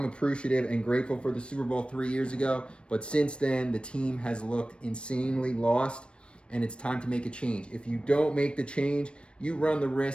appreciative and grateful for the Super Bowl 3 years ago, but since then, the team has looked insanely lost, and it's time to make a change. If you don't make the change, you run the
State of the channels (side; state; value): right; late; 0.057 ms